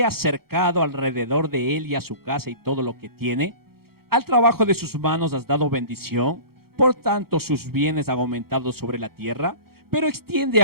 has cercado alrededor de él y a su casa y todo lo que tiene? Al trabajo de sus manos has dado bendición, por tanto sus bienes han aumentado sobre la tierra. Pero extiende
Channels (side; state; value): left; late; 0.94 ms